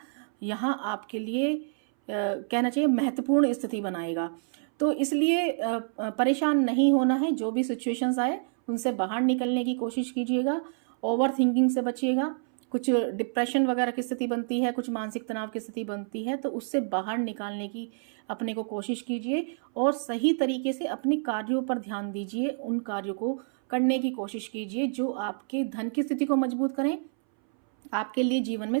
यहाँ आपके लिए कहना चाहिए महत्वपूर्ण स्थिति बनाएगा। तो इसलिए परेशान नहीं होना है, जो भी सिचुएशंस आए उनसे बाहर निकलने की कोशिश कीजिएगा। ओवर थिंकिंग से बचिएगा। कुछ डिप्रेशन वगैरह की स्थिति बनती है, कुछ मानसिक तनाव की स्थिति बनती है, तो उससे बाहर निकालने की अपने को कोशिश कीजिए और सही तरीके से अपने कार्यों पर ध्यान दीजिए। उन कार्यों को करने की कोशिश कीजिए जो आपके धन की स्थिति को मजबूत करें, आपके लिए जीवन में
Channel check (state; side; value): silent; left; 59 dB below the other